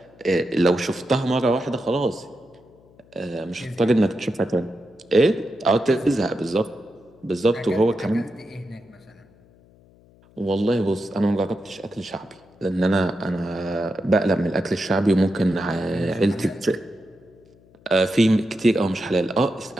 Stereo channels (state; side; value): noise; left; hum, 28 dB below the sound